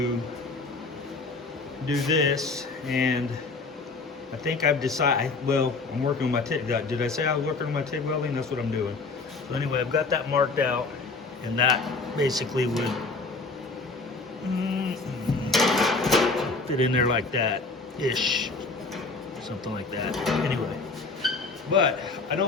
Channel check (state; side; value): quieter; right; 3.9 dB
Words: do this, and I think I've decided, well, I'm working on my TIG. Did I say I was working on my TIG welding? That's what I'm doing. So anyway, I've got that marked out, and that basically would fit in there like that-ish. Something like that. Anyway, but I